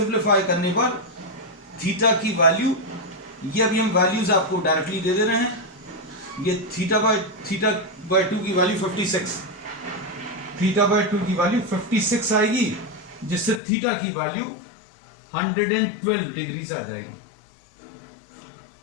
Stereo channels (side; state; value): right; drops out; at 13.6 s